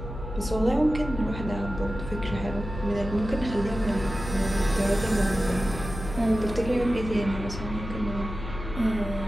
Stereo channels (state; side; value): noise; left; hum, 9 dB below the sound